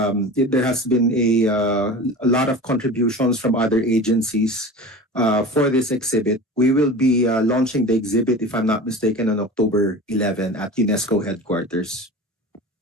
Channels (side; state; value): both; normal; correlation 0.34